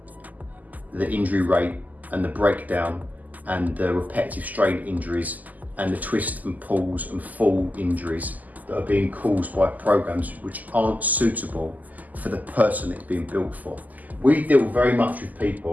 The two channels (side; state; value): left; late; 0.080 ms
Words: the injury rate and the breakdown and the repetitive strain injuries and the twist and pulls and fall injuries that are being caused by programs which aren't suitable for the person it's being built for. We deal very much with